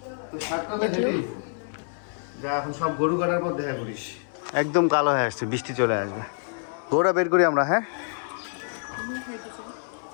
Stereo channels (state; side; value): silent; right; 60 dB below the other